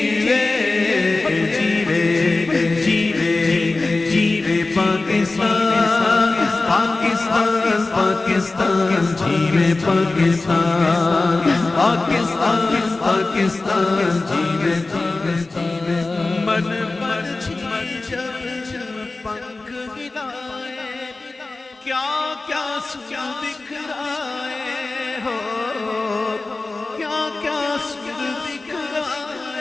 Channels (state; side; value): quieter; right; 3.3 dB